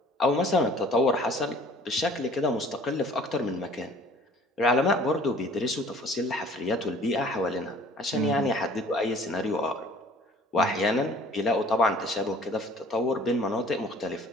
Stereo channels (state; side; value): normal; both; correlation 0.51